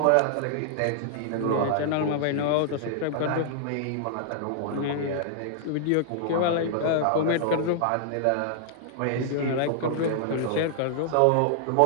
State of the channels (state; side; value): different; both; correlation -0.01